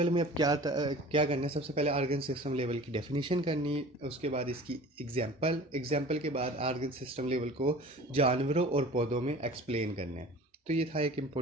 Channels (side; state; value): both; normal; correlation 0.42